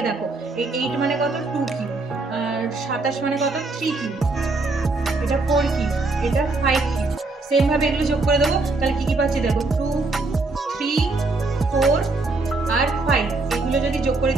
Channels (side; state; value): left; quieter; 3.4 dB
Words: দেখো, এই 8 মানে কত 2 কিউ, আর 27 মানে কত 3 কিউ, এটা 4 কিউ, এটা 5 কিউ, সেম ভাবে এগুলো যোগ করে দেবো। তাহলে কি কি পাচ্ছি দেখো, 2, 3, 4 আর 5, এগুলো যদি যোগ করে